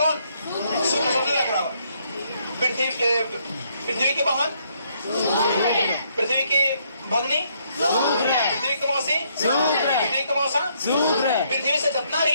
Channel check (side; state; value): both; inverted; correlation -0.70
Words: शुक्र सबसे ज्यादा ग्रह। पृथ्वी के वाहन, पृथ्वी की भगनी, पृथ्वी का मौसी, पृथ्वी का मौसा, पृथ्वी से जितना